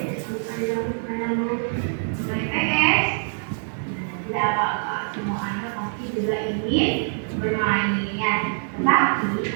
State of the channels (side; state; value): left; silent; digital silence